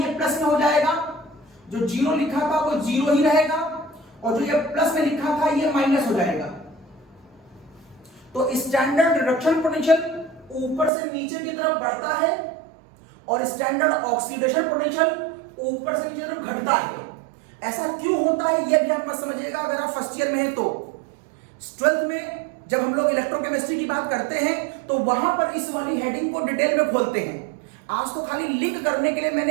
प्लस में हो जाएगा, जो जीरो लिखा था वो जीरो ही रहेगा, और जो ये प्लस में लिखा था ये माइनस हो जाएगा। तो स्टैंडर्ड रिडक्शन पोटेंशियल ऊपर से नीचे की तरफ बढ़ता है और स्टैंडर्ड ऑक्सीडेशन पोटेंशियल ऊपर से नीचे की तरफ घटता है। ऐसा क्यों होता है ये भी आप मत समझिएगा अगर आप फर्स्ट ईयर में हैं तो। ट्वेल्थ में जब हम लोग इलेक्ट्रोकेमिस्ट्री की बात करते हैं तो वहां पर इस वाली हेडिंग को डिटेल में खोलते हैं। आज तो खाली लिंक करने के लिए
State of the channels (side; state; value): left; drops out; at 10.9 s